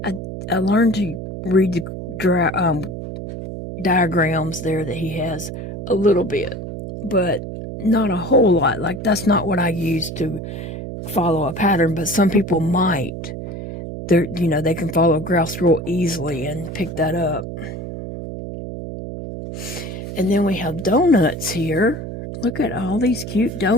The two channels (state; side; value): noise; right; hum, 8 dB below the sound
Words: I learned to read the diagrams there that he has a little bit, but not a whole lot. Like, that's not what I use to follow a pattern, but some people might. You know, they can follow graphs real easily and pick that up. And then we have donuts here. Look at all these cute